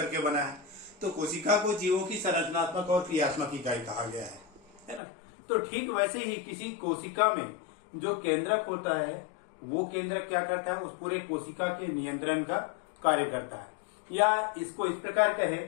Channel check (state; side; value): drops out; right; at 5.0 s